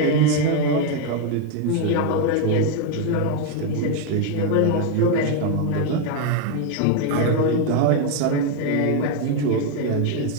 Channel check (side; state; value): both; different; correlation 0.01